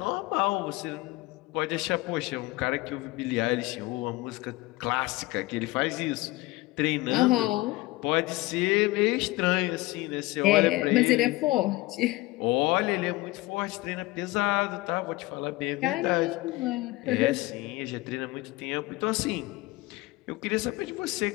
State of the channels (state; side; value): quieter; right; 20.2 dB